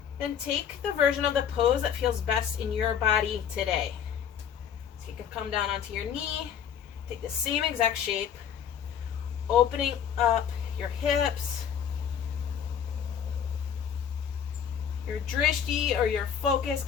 then take the version of the pose that feels best in your body today. So you can come down onto your knee, take the same exact shape, opening up your hips. Your drishti or your focus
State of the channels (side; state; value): right; quieter; 8.3 dB